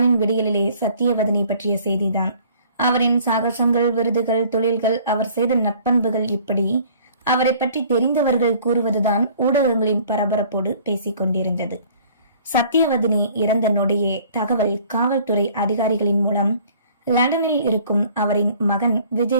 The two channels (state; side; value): inverted; both; correlation -0.54